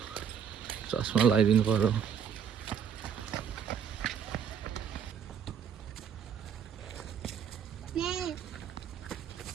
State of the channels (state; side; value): quieter; left; 7.9 dB